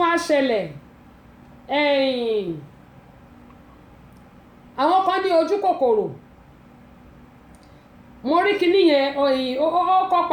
wá ṣẹlẹ̀ àwọn kan ní ojú kòkòrò mo rí kíní yẹn ó kọ́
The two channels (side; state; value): both; identical; correlation 1.00